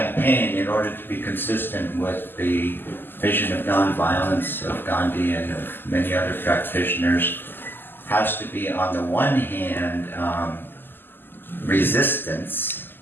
in order to be consistent with the vision of nonviolence of Gandhi and of many other practitioners, has to be, on the one hand, resistance,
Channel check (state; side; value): late; right; 0.095 ms